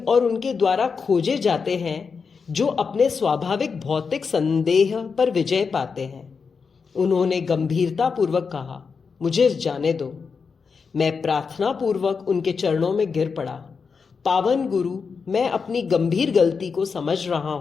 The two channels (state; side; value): quieter; right; 5.4 dB